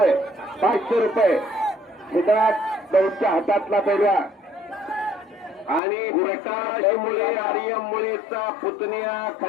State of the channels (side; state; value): right; drops out; at 5.8 s